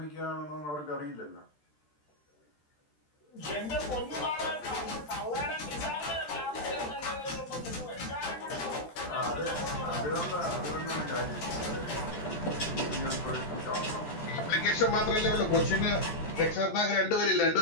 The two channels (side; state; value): right; late; 13 ms